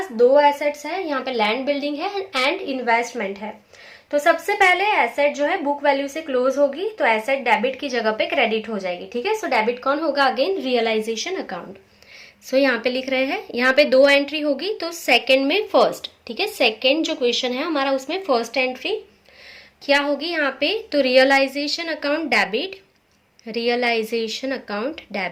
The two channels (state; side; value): identical; both; correlation 1.00